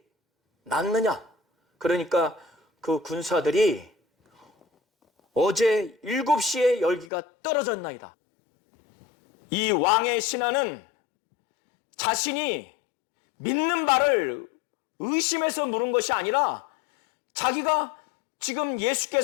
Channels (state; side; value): drops out; right; at 7.1 s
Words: 낫느냐? 그러니까 그 군사들이 어제 7시에 열기가 떨어졌나이다. 이 왕의 신하는 자신이 믿는 바를 의심해서 물은 것이 아니라 자기가 지금